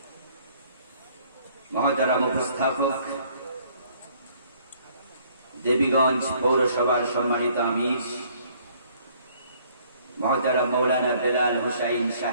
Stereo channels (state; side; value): inverted; both; correlation -0.61